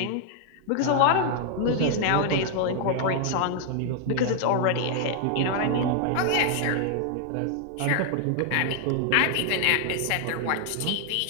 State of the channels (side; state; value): both; different; correlation 0.00